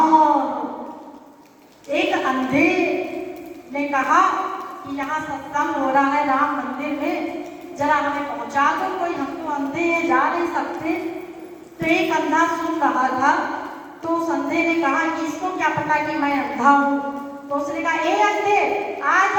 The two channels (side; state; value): both; identical; correlation 1.00